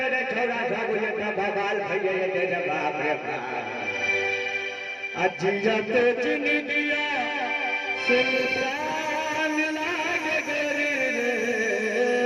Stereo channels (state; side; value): identical; both; correlation 1.00